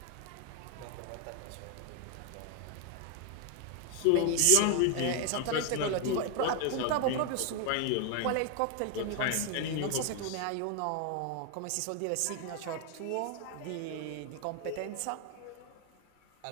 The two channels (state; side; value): different; both; correlation 0.00